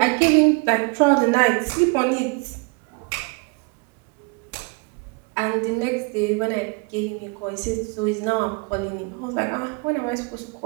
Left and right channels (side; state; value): left; quieter; 31.9 dB